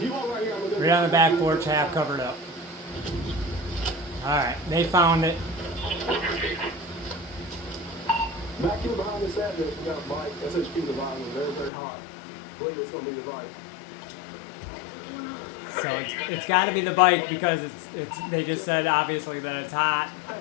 Right on the back porch, half covered up. Alright, they found it. Back here behind this address, we got a bike. SHP Divine was very, very hot. I believe it's going to be the bike. So it's got to be the bike because it's. They just said obviously that it's hot,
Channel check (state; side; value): drops out; right; at 11.7 s